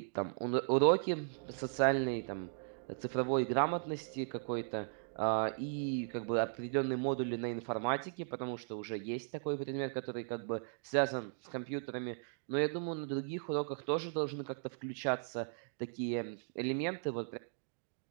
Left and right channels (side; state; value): left; silent; digital silence